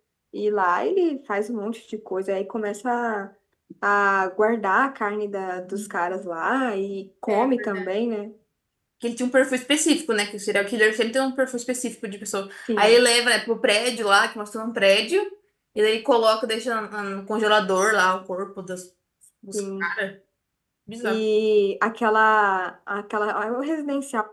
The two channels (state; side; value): identical; both; correlation 1.00